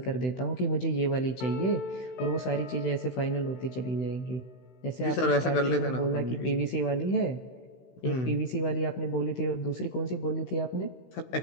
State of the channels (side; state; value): right; late; 16 ms